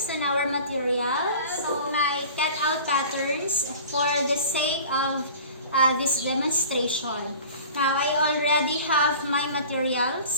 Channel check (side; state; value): both; inverted; correlation -0.41